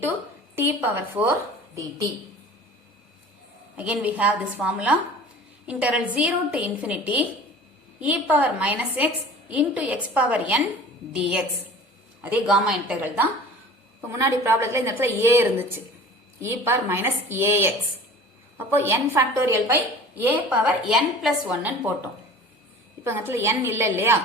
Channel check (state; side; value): normal; both; correlation 0.42